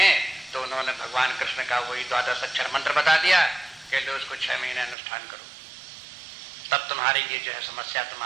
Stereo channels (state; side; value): drops out; left; at 5.0 s